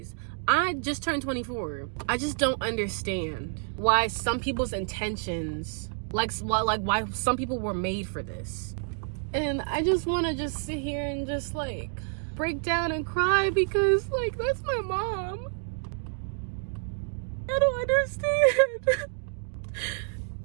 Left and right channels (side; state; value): left; silent; 59 dB below the other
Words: I just turned 24. I just don't understand why some people's intentions, like why some people were made for this. And I just want to just sit here and just like break down and cry because like that's my mom. I don't understand.